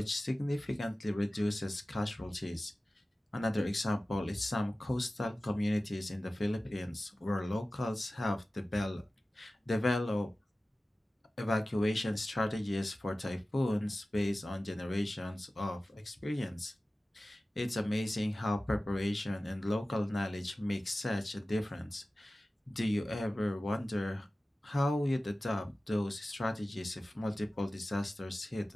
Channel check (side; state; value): both; normal; correlation 0.96